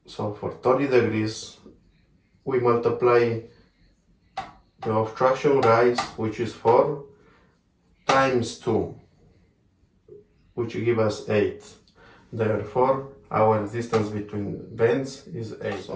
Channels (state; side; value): identical; both; correlation 1.00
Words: So for 30 degrees, we multiply the obstruction rise, which is 4, times 2, which give us 8. Therefore, our distance between bends is 8.